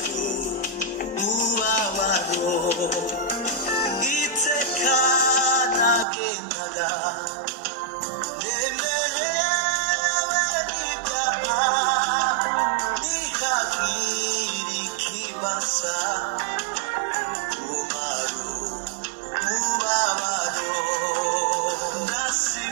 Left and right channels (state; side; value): drops out; left; at 6.1 s